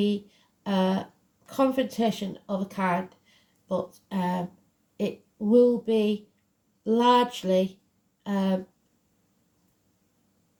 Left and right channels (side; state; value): both; identical; correlation 1.00